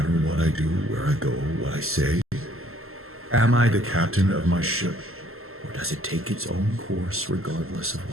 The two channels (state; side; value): late; left; 0.62 ms